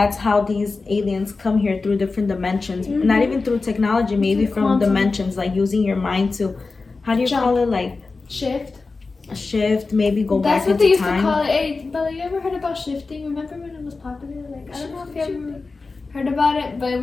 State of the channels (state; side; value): quieter; right; 3.9 dB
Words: how these aliens come here, through different dimensions. Not even through technology, maybe Through from quantum. dimensions, like using your mind to, how do you Jump. call it, like Shift. a shift, maybe go That's back what they into used time. to call it. Hey, Bella, you ever heard about shifting? Remember when it was popular? Like, I don't know if you ever heard about it, but it